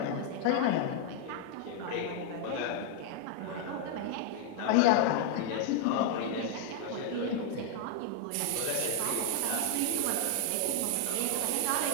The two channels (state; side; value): different; both; correlation 0.00